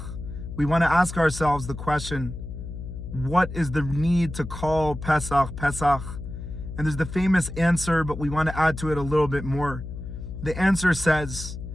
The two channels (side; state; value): left; noise; hum, 9 dB below the sound